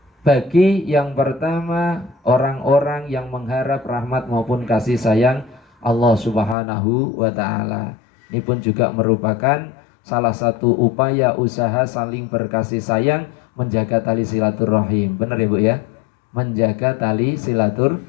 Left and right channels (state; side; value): drops out; right; at 6.6 s